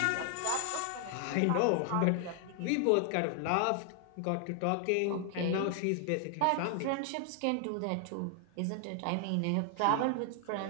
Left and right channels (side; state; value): both; different; correlation 0.00